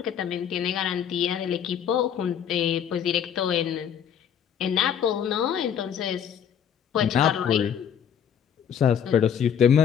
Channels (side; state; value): right; quieter; 8.5 dB